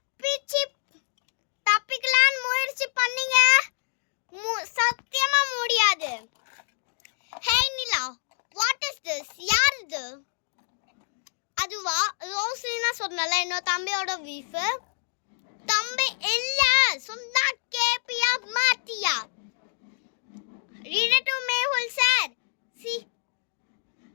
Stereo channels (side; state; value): right; silent; digital silence